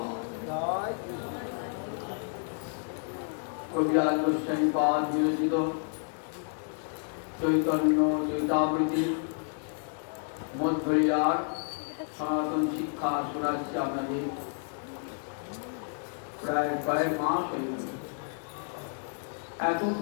কবিরাজ গোস্বামী পাদ বিরচিত চৈতন্য চৈতাবৃতি মধ্বরিয়ার সনাতন শিক্ষা শোনাচ্ছি আপনাদের। প্রায় কয়েক মাস হয়ে গেল, এত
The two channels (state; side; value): silent; right; 57 dB below the other